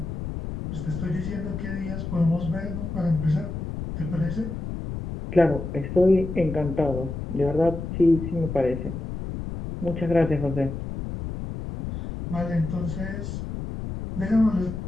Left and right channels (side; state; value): left; noise; rumble, 6 dB below the sound